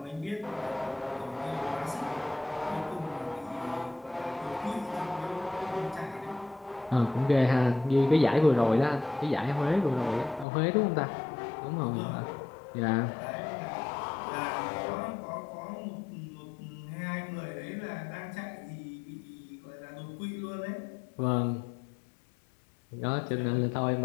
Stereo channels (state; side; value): drops out; right; at 10.5 s